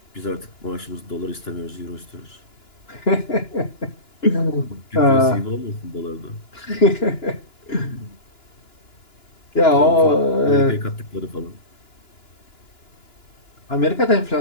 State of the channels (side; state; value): right; late; 2.9 ms